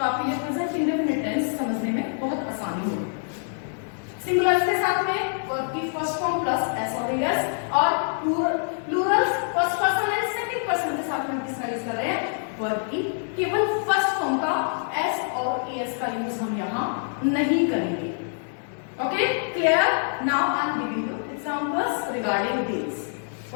आपके लिए प्रेजेंट इंडेफिनिट टेंस समझने में बहुत आसानी होगी। सिंगुलर के साथ में वर्ब की फर्स्ट फॉर्म प्लस एस और एस, और Plurals first person and second person के साथ में किसका यूज कर रहे हैं, वर्ब की केवल फर्स्ट फॉर्म का एस और एस का यूज हम यहां नहीं करेंगे। Okay, clear? Now I am giving you examples regarding this.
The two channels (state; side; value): silent; right; digital silence